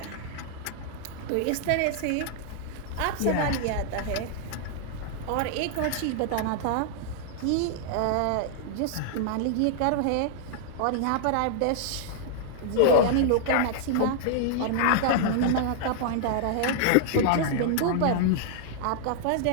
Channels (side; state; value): both; different; correlation -0.01